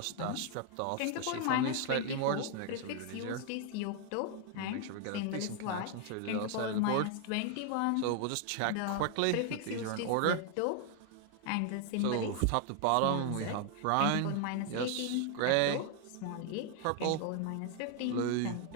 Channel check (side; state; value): both; different; correlation 0.00